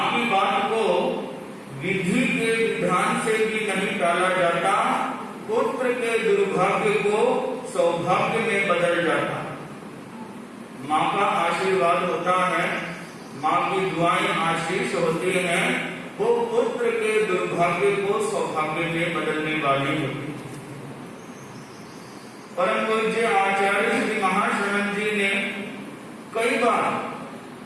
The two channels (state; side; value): identical; both; correlation 1.00